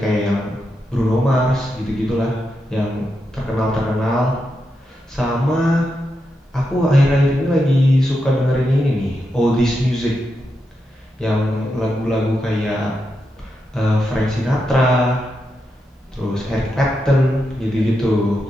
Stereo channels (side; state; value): both; normal; correlation 0.86